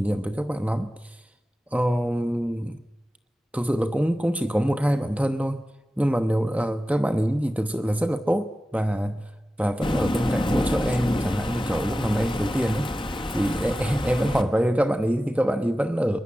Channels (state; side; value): normal; both; correlation 0.94